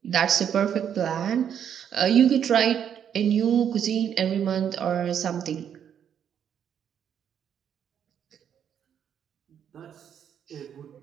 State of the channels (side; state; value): left; quieter; 8.7 dB